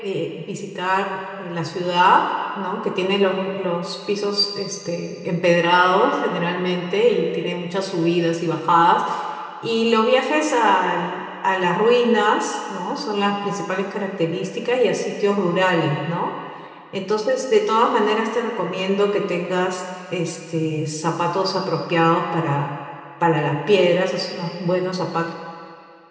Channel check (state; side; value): identical; both; correlation 1.00